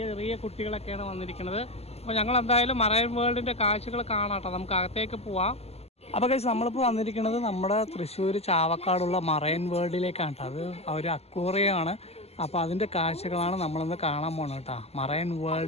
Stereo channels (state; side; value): late; right; 0.30 ms